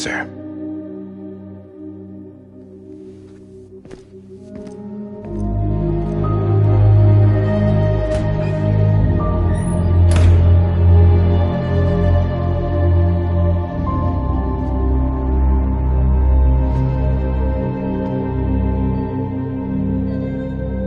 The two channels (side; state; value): both; identical; correlation 1.00